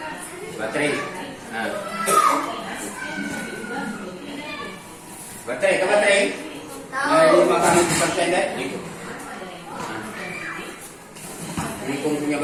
Baterai. Nah. Baterai. Nah, 5% deh. Gitu. Nah. Ini punya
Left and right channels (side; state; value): both; identical; correlation 1.00